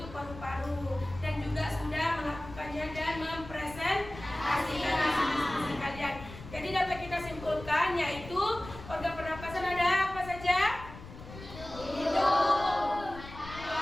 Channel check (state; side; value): noise; left; rumble, 14 dB below the sound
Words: paru-paru, dan juga sudah melakukannya dan mempresentasikan hasil kalian. Jadi dapat kita simpulkan, yaitu organ pernapasan ada apa saja? Hidung,